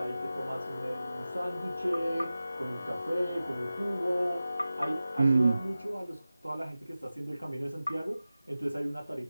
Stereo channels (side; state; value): both; inverted; correlation -0.95